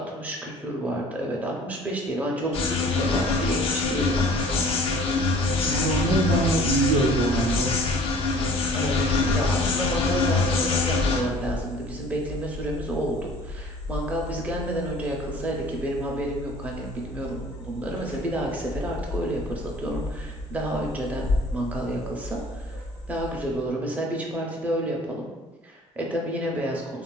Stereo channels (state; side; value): normal; both; correlation 0.50